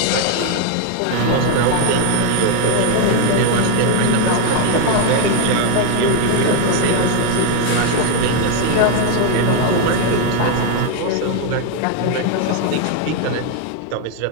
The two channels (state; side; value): different; both; correlation 0.01